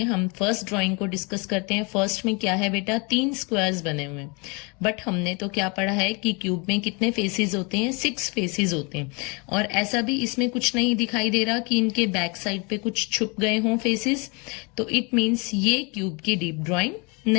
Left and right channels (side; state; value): right; quieter; 30.8 dB